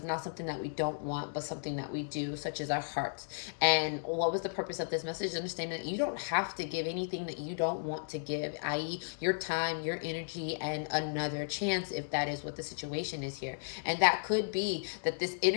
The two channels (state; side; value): silent; right; digital silence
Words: not something that we don't want, but something that we do, such as our hearts. And what was the purpose of this message? Understanding that you don't have to give anything that you don't want to give, i.e. your time, your energy, and another chance, if that is what the situation is here. And that could be that this